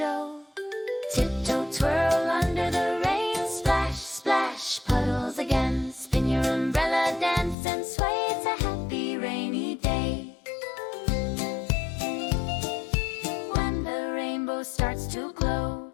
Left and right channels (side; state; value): right; drops out; at 7.6 s